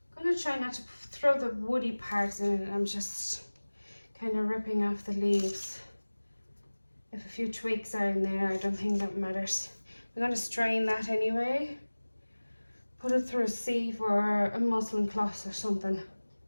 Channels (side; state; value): both; inverted; correlation -1.00